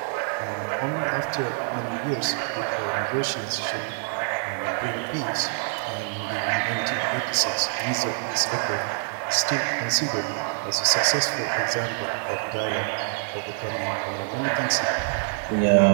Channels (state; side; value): silent; left; 61 dB below the other